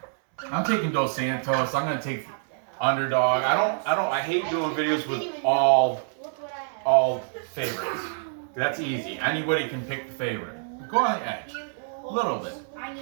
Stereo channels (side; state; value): left; silent; 61 dB below the other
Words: Dos Santos. I'm going to take underdog. I hate doing videos with all favorites. That's easy. Anybody can pick the favorite. Go on the edge. A little bit.